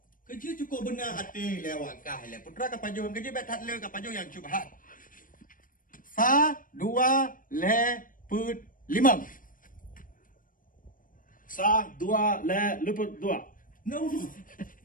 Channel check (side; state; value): right; late; 0.40 ms